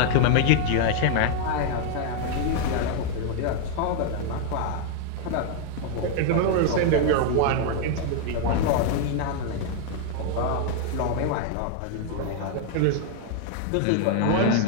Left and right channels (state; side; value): different; both; correlation 0.00